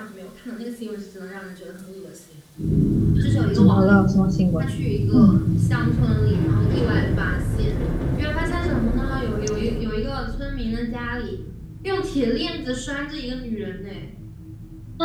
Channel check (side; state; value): both; identical; correlation 1.00